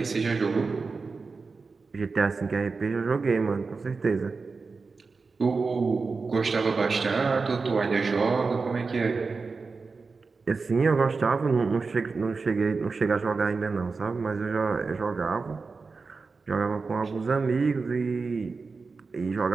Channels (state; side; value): quieter; left; 4.4 dB